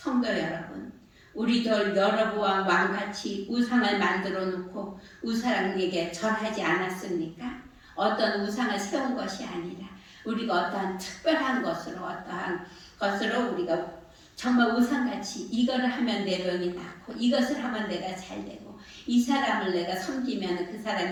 여러분, 우리도 여로보암 왕같이 우상을 만들어 놓고 우상에게 절하지 않았습니까? 어떤 우상을 세운 것이 아니라 우리가 어떠한 특별한 것으로 우리가 정말 우상같이 이거를 하면 내 병이 낫고 이것을 하면 내가 잘 되고 이 사람을 내가 섬기면 그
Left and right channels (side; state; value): both; identical; correlation 1.00